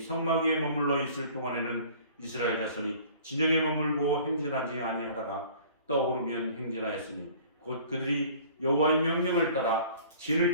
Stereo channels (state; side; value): inverted; both; correlation -0.50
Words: 성막 위에 머물러 있을 동안에는 이스라엘 자손이 진영에 머물고 행진하지 아니하다가 떠오르면 행진하였으니 곧 그들이 여호와의 명령을 따라 진을